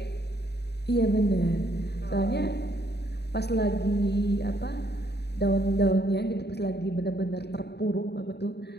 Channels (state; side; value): late; right; 0.48 ms